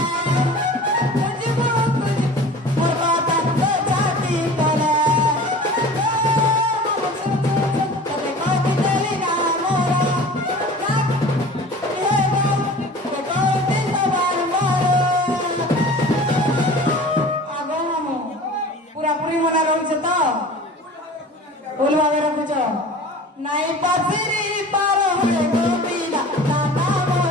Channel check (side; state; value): both; normal; correlation 0.40